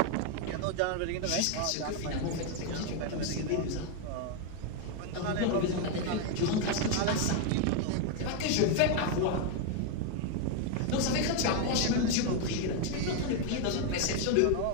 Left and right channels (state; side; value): different; both; correlation 0.01